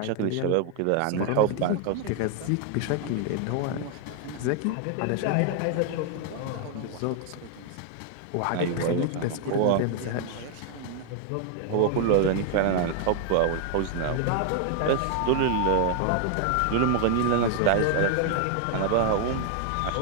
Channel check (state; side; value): different; both; correlation 0.00